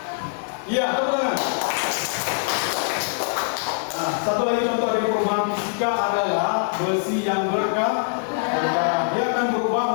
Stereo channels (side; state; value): right; silent; digital silence